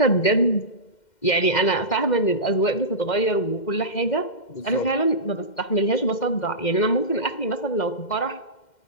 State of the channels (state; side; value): late; right; 2.1 ms